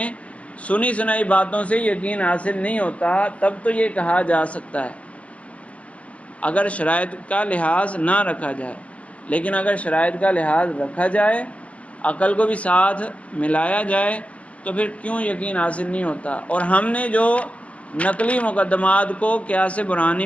سنی سنائی باتوں سے یقین حاصل نہیں ہوتا، تب تو یہ کہا جا سکتا ہے اگر شرائط کا لحاظ نہ رکھا جائے۔ لیکن اگر شرائط کا لحاظ رکھا جائے، عقل کو بھی ساتھ ملایا جائے، تو پھر کیوں یقین حاصل نہیں ہوتا؟ اور ہم نے جو نقلی مقدمات کو قیاس برہانی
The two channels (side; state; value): right; late; 0.064 ms